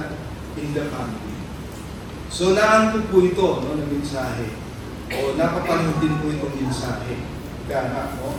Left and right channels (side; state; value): both; identical; correlation 1.00